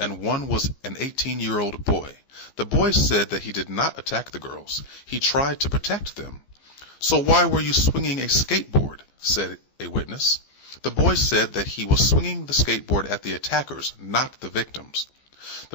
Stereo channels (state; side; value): late; right; 15 ms